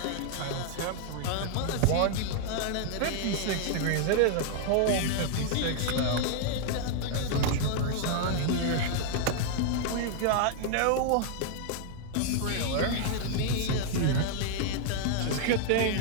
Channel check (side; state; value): both; different; correlation -0.01